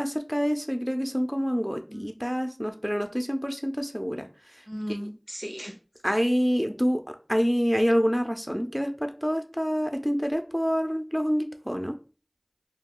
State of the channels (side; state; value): both; identical; correlation 1.00